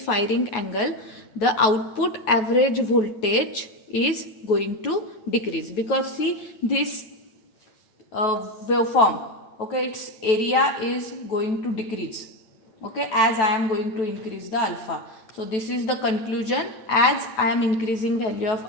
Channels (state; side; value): late; right; 9.3 ms